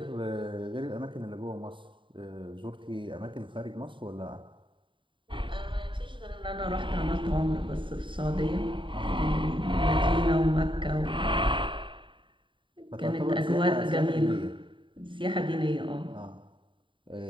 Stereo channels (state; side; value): late; left; 0.24 ms